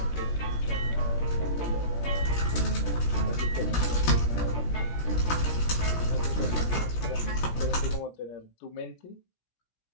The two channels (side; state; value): right; late; 17 ms